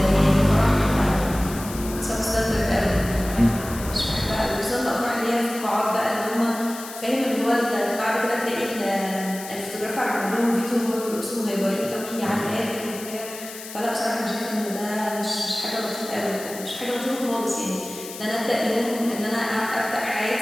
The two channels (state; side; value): noise; left; hiss, 12 dB below the sound